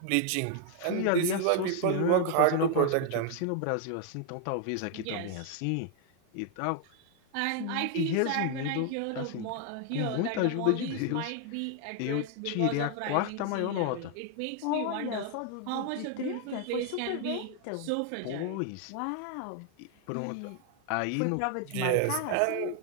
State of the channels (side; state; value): both; different; correlation 0.00